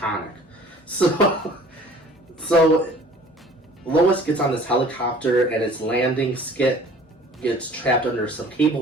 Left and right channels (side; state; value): both; normal; correlation 0.50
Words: So Lois gets on this helicopter and its landing skit gets trapped under some